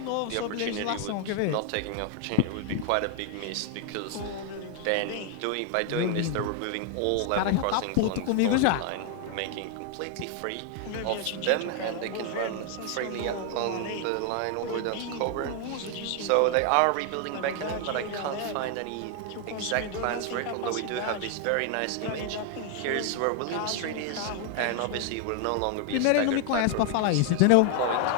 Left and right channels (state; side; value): different; both; correlation 0.00